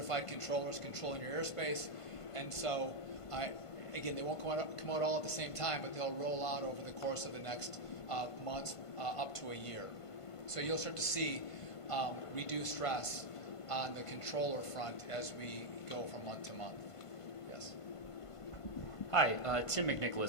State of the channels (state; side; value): late; right; 1.5 ms